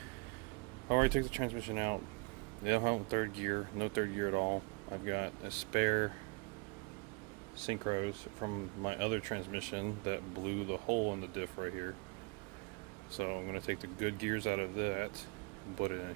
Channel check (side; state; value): left; quieter; 29.9 dB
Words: already took the transmission out. They don't have third gear, no third gear at all. I've got a spare synchros from my other transmission that blew the hole in the diff right here. So I'm going to take the good gears out of that and put it in